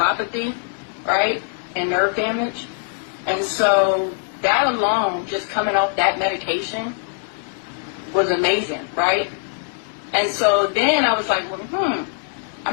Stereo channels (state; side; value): silent; right; digital silence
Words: right, and nerve damage. And so that alone, just coming off that medication, was amazing, right? And so then I was like, well,